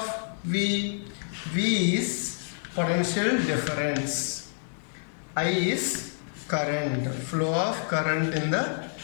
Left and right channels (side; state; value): right; silent; 59 dB below the other